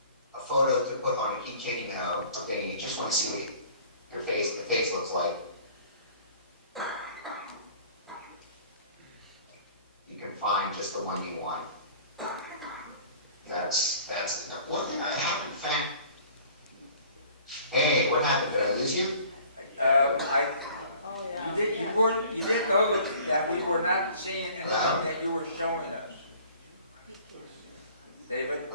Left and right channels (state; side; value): inverted; both; correlation -0.50